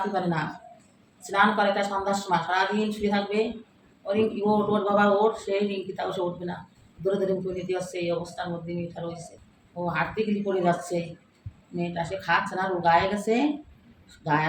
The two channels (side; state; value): both; identical; correlation 1.00